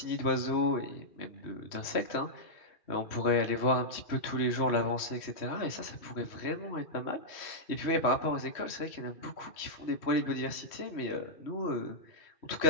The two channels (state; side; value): late; right; 3.1 ms